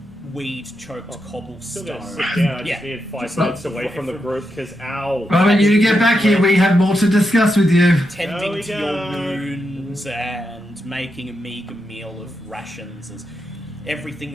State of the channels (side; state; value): both; normal; correlation 0.85